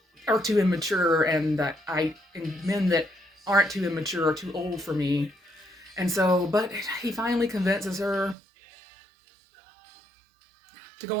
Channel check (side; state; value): left; drops out; at 8.3 s